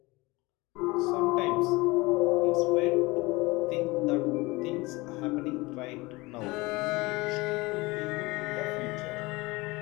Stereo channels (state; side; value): quieter; right; 22.9 dB